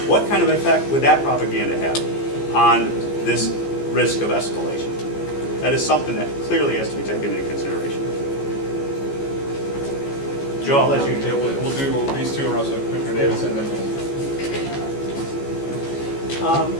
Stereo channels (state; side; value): late; right; 15 ms